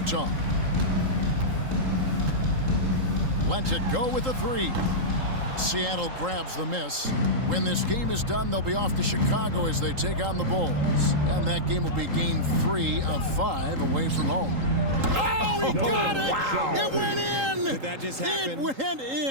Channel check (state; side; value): late; left; 3.8 ms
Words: Lets it go with a three. Seattle grabs the miss. When this game is done, they'll be off to Chicago as they take on the Bulls. And that game will be game 3 of 5 away from home. Oh, he got it! Wow. It went in! Did that just happen? It went